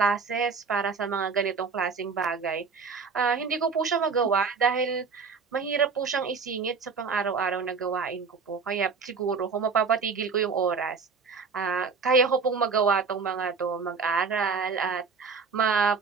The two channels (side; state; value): left; quieter; 5.2 dB